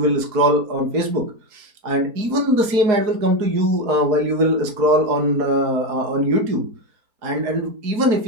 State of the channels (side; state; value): left; late; 4.7 ms